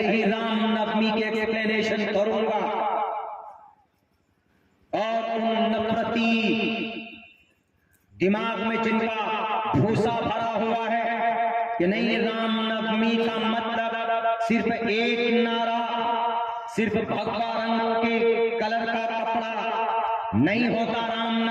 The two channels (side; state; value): both; identical; correlation 1.00